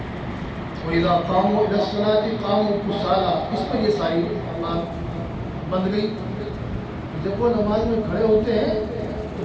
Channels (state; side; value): identical; both; correlation 1.00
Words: وَإِذَا قَامُوا إِلَى الصَّلَاةِ قَامُوا كُسَالَىٰ، اس پر یہ ساری بات بند گئی۔ جب وہ نماز میں کھڑے ہوتے ہیں تو